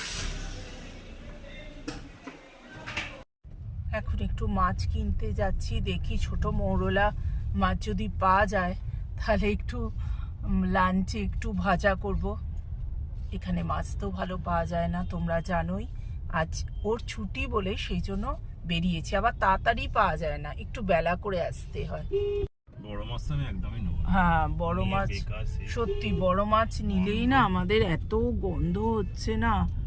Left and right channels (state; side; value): identical; both; correlation 1.00